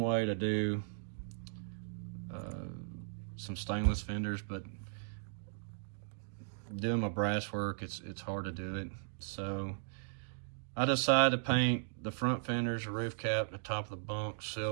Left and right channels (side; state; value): left; silent; digital silence